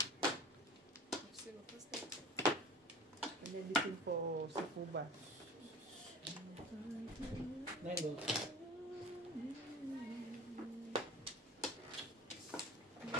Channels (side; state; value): both; normal; correlation 0.38